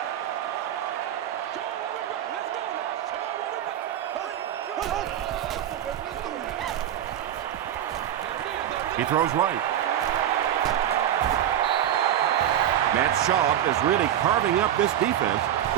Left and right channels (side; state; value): left; quieter; 11.0 dB